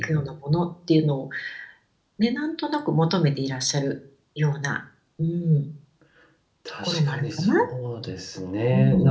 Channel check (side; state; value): both; identical; correlation 1.00